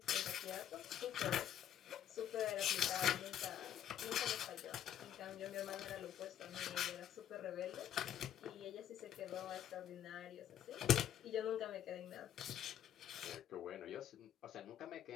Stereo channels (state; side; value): quieter; right; 10.2 dB